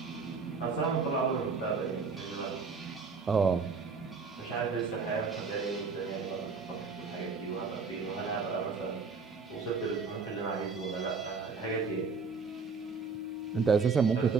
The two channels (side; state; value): left; quieter; 4.8 dB